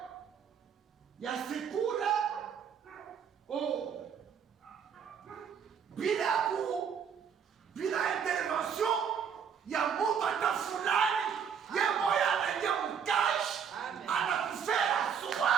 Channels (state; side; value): quieter; left; 7.4 dB